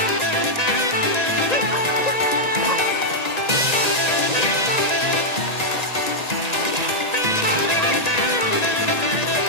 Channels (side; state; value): right; late; 1.9 ms